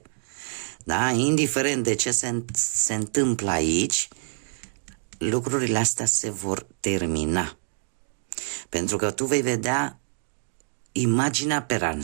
Da? Indiferent de ce se întâmplă aici, lucrurile astea se vor termina. Pentru că tu vei vedea imaginea per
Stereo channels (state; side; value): silent; left; 61 dB below the other